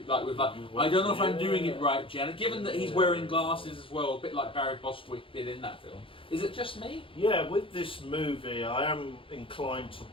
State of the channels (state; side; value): late; right; 0.25 ms